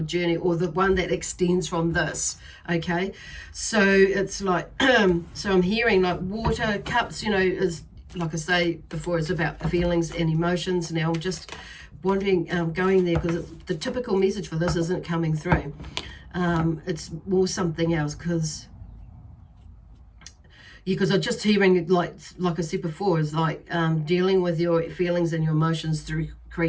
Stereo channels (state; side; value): identical; both; correlation 1.00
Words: journey, or the one that extends from this. Okay, so it's like, so I'm hearing like water cups, you know, is, like I say before, it's about feelings and emotions. Now I'm just wondering, going there, because the typical message for this isn't coming through. It's more something else, because I'm just hearing, like I said before, is like dealing with your feelings and your emotions through